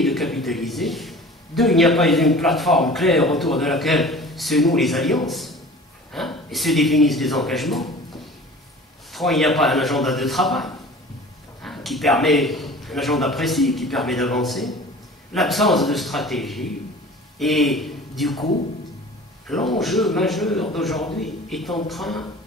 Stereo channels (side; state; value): both; normal; correlation 0.42